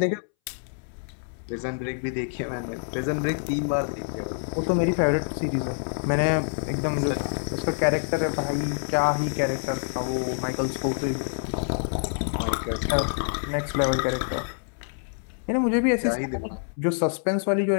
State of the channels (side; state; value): right; silent; 61 dB below the other